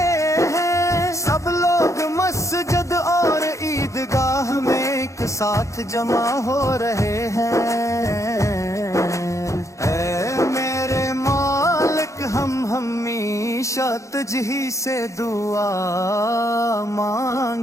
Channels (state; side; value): late; right; 0.15 ms